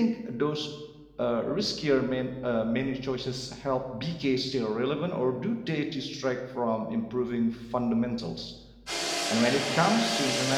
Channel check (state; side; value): identical; both; correlation 1.00